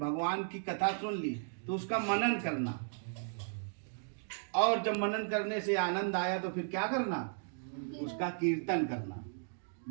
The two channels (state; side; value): silent; left; digital silence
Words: की कथा सुन ली तो उसका मनन करना, और जब मनन करने से आनंद आया तो फिर क्या करना? उसका कीर्तन करना।